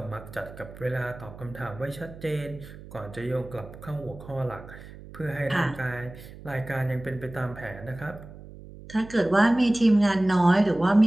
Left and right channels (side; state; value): right; noise; hum, 16 dB below the sound